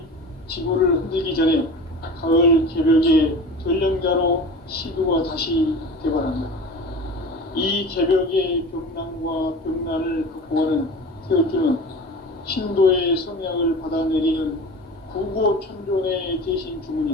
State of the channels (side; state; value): both; normal; correlation 0.35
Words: 지구를 흔들기 전에 가을 개벽의 전령자로 시두가 다시 대발한다. 이 개벽의 병난과 병난을 극복하는 태울주는 신도의 성약을 받아내리는 구고천존의 대신